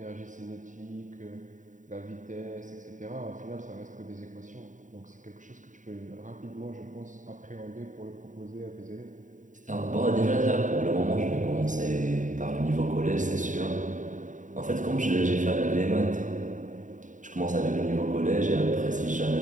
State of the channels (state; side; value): late; left; 0.37 ms